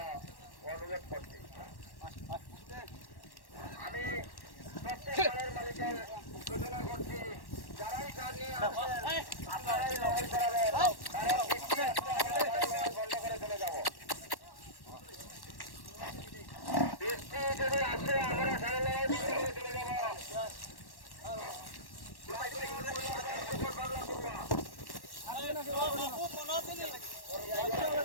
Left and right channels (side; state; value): right; late; 1.1 ms